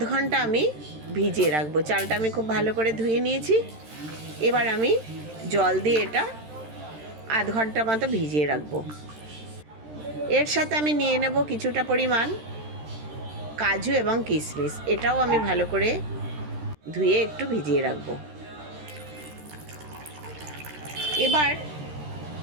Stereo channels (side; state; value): left; late; 13 ms